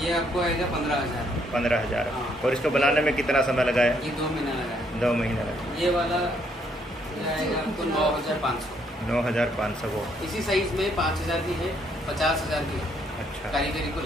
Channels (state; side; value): normal; both; correlation 0.70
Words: आपको आएगा 15,000। 15,000। हाँ। और इसको बनाने में कितना समय लगा है? ये 2 महीना लगा है। 2 महीना लगा। ये वाला आएगा आपको 9,500। 9,500 वो इसी साइज में 5,000 की है, 50,000 की है। अच्छा, कारीगरी को